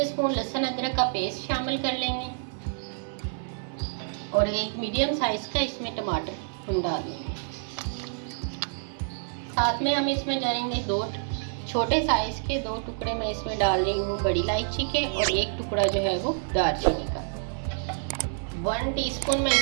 लहसुन अदरक का पेस्ट शामिल कर लेंगे और एक मीडियम साइज का इसमें टमाटर हम डालेंगे। साथ में हम इसमें डालेंगे 2 छोटे साइज के 2 टुकड़े मैं इसमें डाल रही हूँ बड़ी इलायची के और 1 टुकड़ा जो है वो दालचीनी का। 1 टीस्पून मैं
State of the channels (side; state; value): left; silent; 59 dB below the other